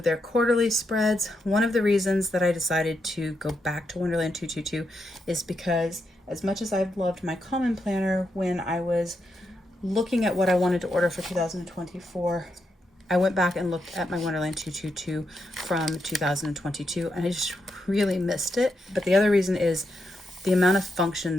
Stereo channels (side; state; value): both; normal; correlation 0.82